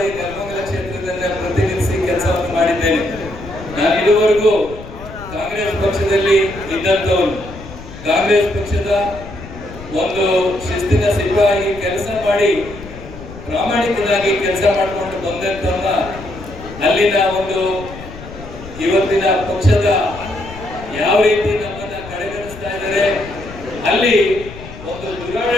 ನೆಲಮಂಗಲ ಕ್ಷೇತ್ರದಲ್ಲಿ ಪ್ರತಿನಿಧಿಸಿ ಕೆಲಸವನ್ನು ಮಾಡಿದ್ದೇನೆ. ನಾನು ಇದುವರೆಗೂ ಕಾಂಗ್ರೆಸ್ ಪಕ್ಷದಲ್ಲಿ ಇದ್ದಂತವನು, ಕಾಂಗ್ರೆಸ್ ಪಕ್ಷದ ಒಂದು ಶಿಸ್ತಿನ ಸಿಪಾಯಿ ಕೆಲಸ ಮಾಡಿ ಪ್ರಾಮಾಣಿಕನಾಗಿ ಕೆಲಸ ಮಾಡಿಕೊಂಡು ಬಂದಂತವನ್ನ ಅಲ್ಲಿನ ಒಂದು ಇವತ್ತಿನ ಪಕ್ಷದ ಯಾವ ರೀತಿ ನಮ್ಮನ್ನ ಕಡೆಗಣಿಸ್ತಾ ಇದ್ದಾರೆ, ಅಲ್ಲಿ ಒಂದು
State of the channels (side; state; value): left; noise; rumble, 15 dB below the sound